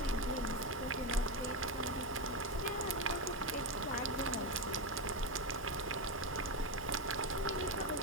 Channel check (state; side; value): normal; both; correlation 0.12